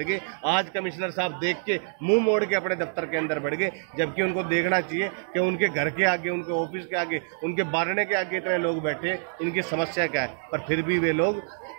गए। आज कमिश्नर साहब देख के मुंह मोड़ के अपने दफ्तर के अंदर बढ़ गए, जबकि उनको देखना चाहिए कि उनके घर के आगे, उनके ऑफिस के आगे, उनके बारने के आगे इतने लोग बैठे, इनकी समस्या क्या है। पर फिर भी वे लोग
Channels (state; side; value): silent; left; digital silence